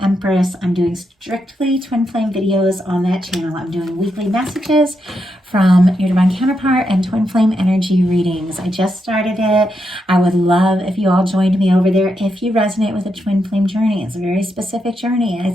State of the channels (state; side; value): normal; both; correlation 0.83